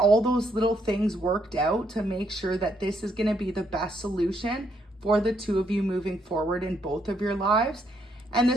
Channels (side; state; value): both; normal; correlation 0.74